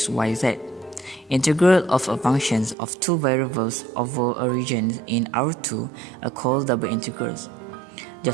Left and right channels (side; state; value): left; drops out; at 2.8 s